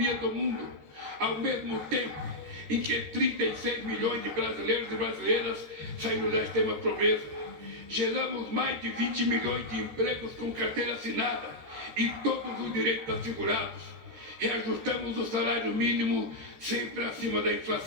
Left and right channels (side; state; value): left; late; 13 ms